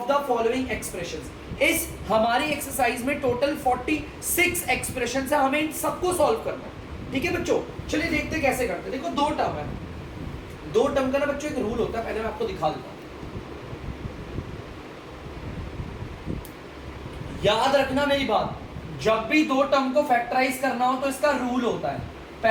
the following expressions. इस हमारी एक्सरसाइज में टोटल 46 एक्सप्रेशंस है, हमें इन सबको सॉल्व करना है। ठीक है बच्चों, चलिए देखते हैं कैसे करते हैं। देखो दो टर्म है, दो टर्म का ना बच्चों एक रूल होता है, पहले मैं आपको दिखा देता हूं। याद रखना मेरी बात, जब भी दो टर्म को फैक्टराइज करना हो तो इसका रूल होता है।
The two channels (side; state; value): both; identical; correlation 1.00